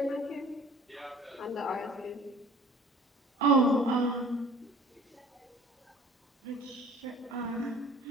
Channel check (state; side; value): normal; both; correlation 0.48